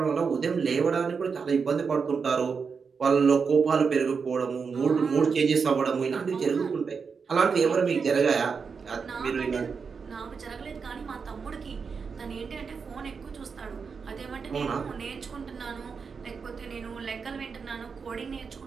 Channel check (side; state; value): left; quieter; 5.5 dB